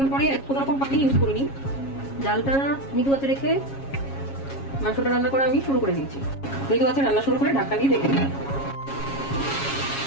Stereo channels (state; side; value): late; right; 7.3 ms